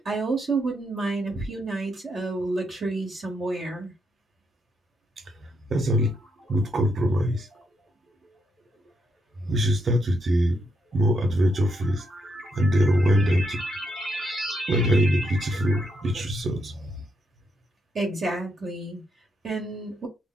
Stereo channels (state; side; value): normal; both; correlation 0.79